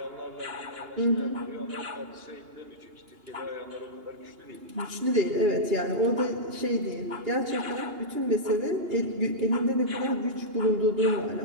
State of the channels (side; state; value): left; late; 2.8 ms